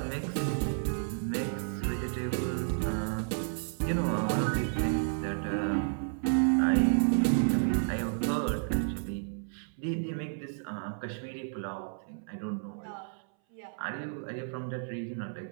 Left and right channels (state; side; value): silent; left; 57 dB below the other